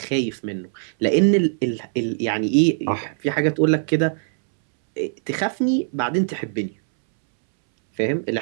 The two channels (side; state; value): left; silent; 65 dB below the other